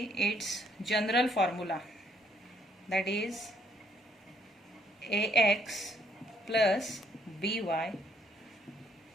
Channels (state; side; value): normal; both; correlation 0.69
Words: its general formula, that is ax plus by